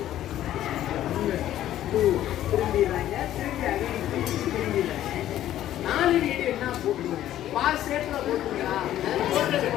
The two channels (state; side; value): quieter; right; 12.6 dB